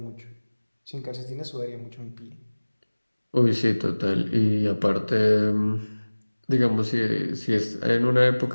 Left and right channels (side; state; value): both; inverted; correlation -1.00